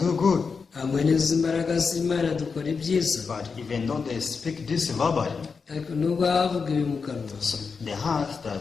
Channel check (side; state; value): right; quieter; 5.2 dB